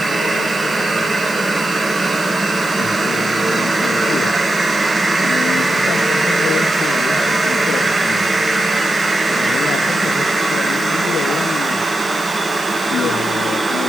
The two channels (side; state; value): right; noise; hiss, 17 dB below the sound